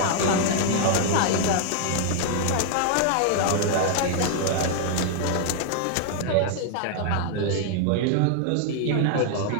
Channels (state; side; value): different; both; correlation 0.00